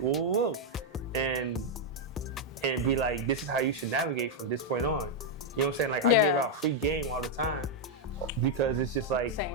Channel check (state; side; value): normal; both; correlation 0.00